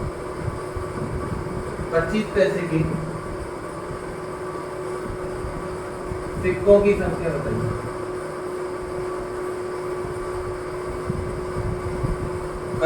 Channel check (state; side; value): identical; both; correlation 1.00